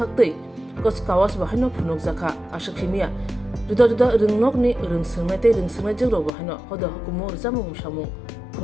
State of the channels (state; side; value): drops out; right; at 6.3 s